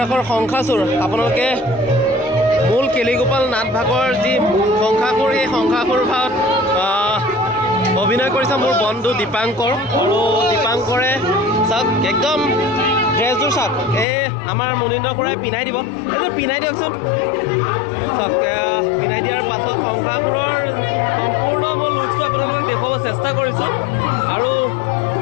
শংখাচুৰ আপোনালোকে মূল কেলিগোপাল নাট ভাগৰ যি শংখাসুৰ এই শংখাসুৰ ভাগত অভিনয় কৰিছে মোৰ বন্ধু দীপাংকৰ আৰু দীপাংকৰে চাওক একদম ড্ৰেছযোৰ চাওক এই আমাৰ মুনীন্দ্ৰ খুৰাই পিন্ধাই দিব এইযোৰ পিন্ধাই দিয়কচোন চাওক পিন্ধাই দিয়াৰ পাছত শংখাসুৰৰ সম্পূৰ্ণ মই লুকছটো আপোনালোকক দেখুৱাব চেষ্টা কৰিছোঁ আৰু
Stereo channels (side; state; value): right; drops out; at 14.1 s